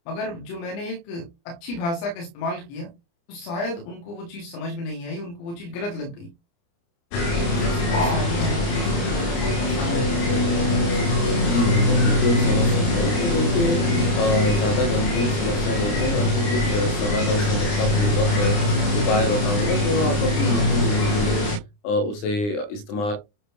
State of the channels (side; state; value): right; late; 29 ms